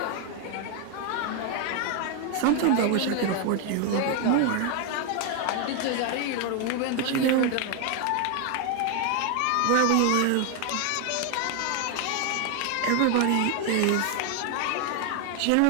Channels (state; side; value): different; both; correlation 0.01